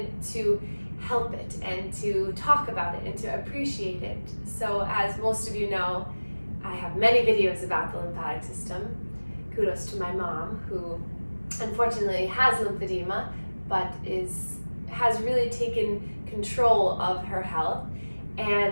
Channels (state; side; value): inverted; both; correlation -1.00